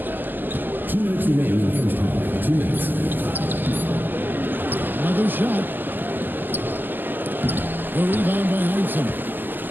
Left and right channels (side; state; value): left; late; 0.089 ms